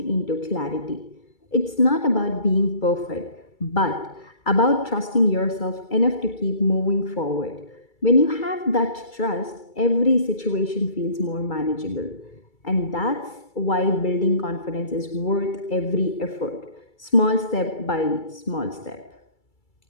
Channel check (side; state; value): right; late; 2.3 ms